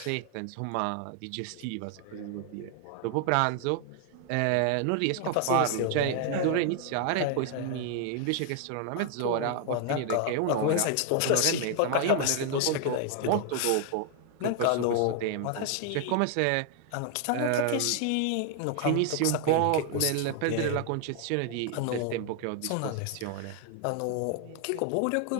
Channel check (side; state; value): both; different; correlation 0.00